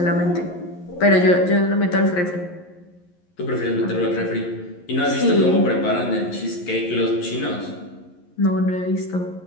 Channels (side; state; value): right; late; 11 ms